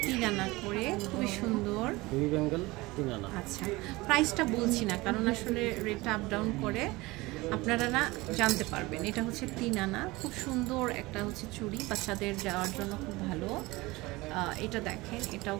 তিন আনা করে, খুবই সুন্দর। আচ্ছা, প্রাইসটা বলছি না কারণ আসলে রেটটা আপ ডাউন করে, আপনারা না জানতে পারবেন। এটা হচ্ছে তিন আনা, খুব সুন্দর একটা হচ্ছে চুড়ি, বাচ্চাদের যাওয়ার জন্য খুব ভালো। এটা দেখেন, এটাও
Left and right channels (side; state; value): left; quieter; 21.5 dB